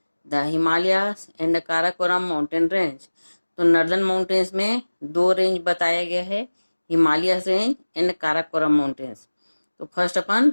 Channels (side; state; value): both; inverted; correlation -1.00